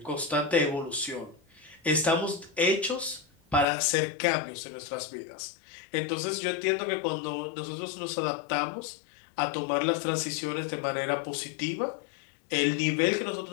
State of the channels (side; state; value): right; drops out; at 3.7 s